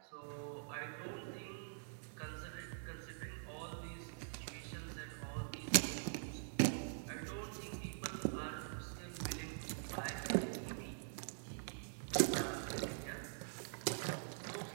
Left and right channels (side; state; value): left; silent; digital silence